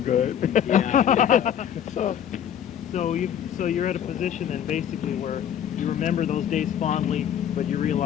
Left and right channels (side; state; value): right; quieter; 9.6 dB